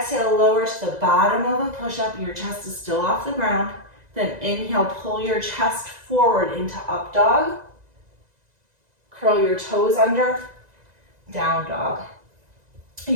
lower to the bottom of a push-up. Your chest is still off the ground. Then inhale, pull your chest forward into up dog. Curl your toes under, down dog.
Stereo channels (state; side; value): late; left; 2.0 ms